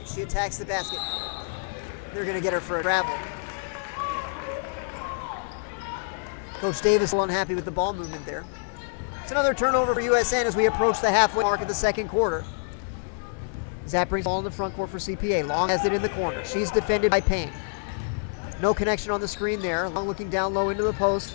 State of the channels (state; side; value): silent; right; 57 dB below the other